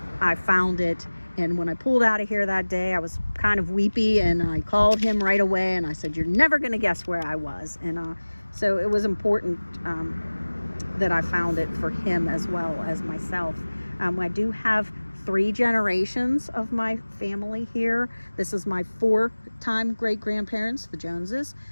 I found it. And when I pulled out of here that day, I was kind of weepy, and I called him right away, and I said, "You're never going to guess where I was." And so it was important that I found it for him as well as myself. I do have 3 generations of my family here. This is my 4-time great-grandparents, the Joneses,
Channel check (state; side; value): inverted; both; correlation -1.00